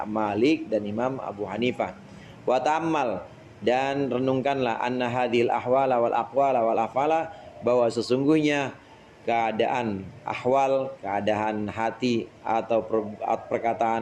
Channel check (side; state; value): both; identical; correlation 1.00